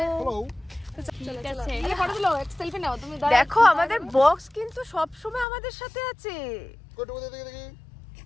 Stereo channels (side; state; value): right; drops out; at 5.5 s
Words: দেখো আমাদের বক্স কিন্তু সব সময় আমাদের সাথে আছে।